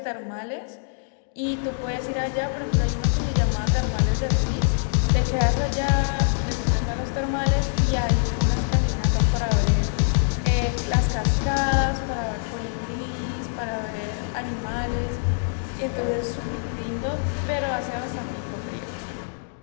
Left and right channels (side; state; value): right; silent; digital silence